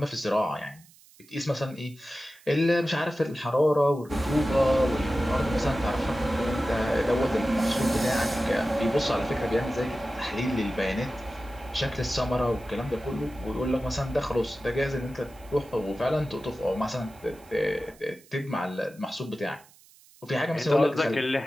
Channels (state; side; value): noise; right; hiss, 26 dB below the sound